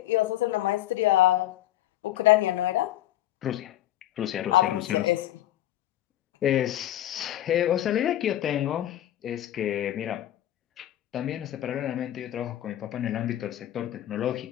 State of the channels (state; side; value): quieter; right; 13.2 dB